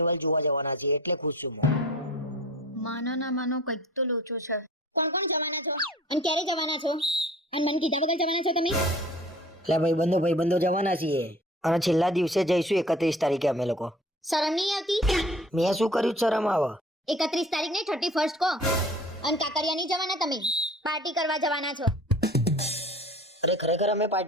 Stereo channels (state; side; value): normal; both; correlation 0.45